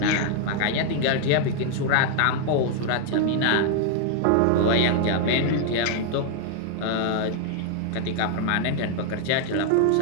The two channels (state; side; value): different; both; correlation 0.00